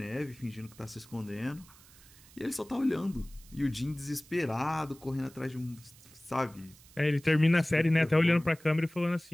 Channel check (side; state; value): right; noise; hiss, 24 dB below the sound